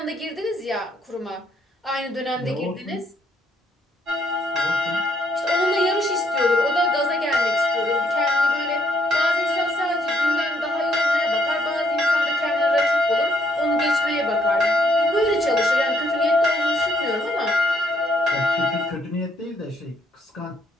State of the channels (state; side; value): normal; both; correlation 0.70